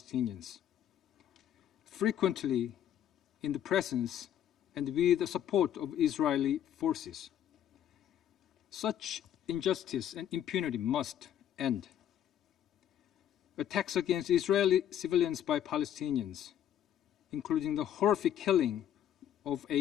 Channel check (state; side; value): quieter; right; 10.3 dB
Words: frequently in the presence and with the support of Israeli forces. Such injustice and impunity must end. Attacks against Israeli civilians by Palestinians, including the horrific killing of